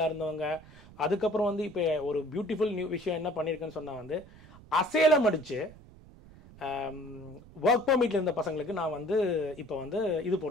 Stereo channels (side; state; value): right; noise; rumble, 21 dB below the sound